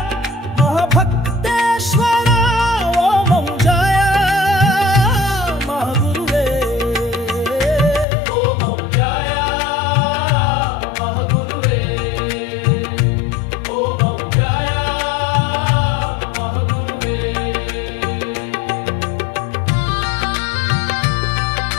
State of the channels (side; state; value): right; drops out; at 8.1 s